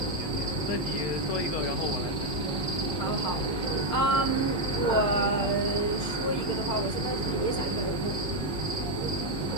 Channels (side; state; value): right; late; 6.6 ms